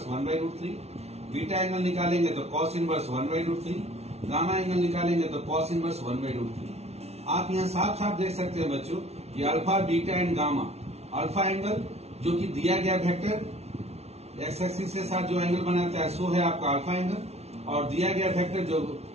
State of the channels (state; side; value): late; left; 0.31 ms